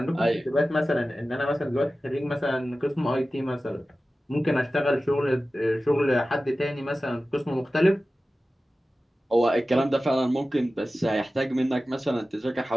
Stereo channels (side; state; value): both; normal; correlation 0.95